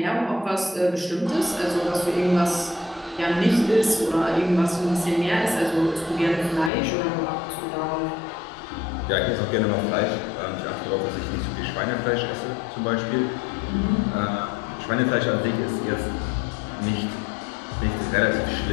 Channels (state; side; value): drops out; right; at 6.7 s